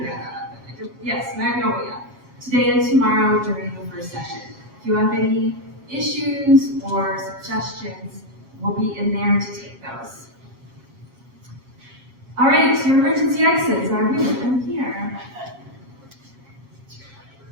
Yes, Magnolia. Today and tomorrow during the first session. If you have any issues or suggestions, we'll be in there to take those. All right, your emergency exits are here.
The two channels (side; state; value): left; late; 8.3 ms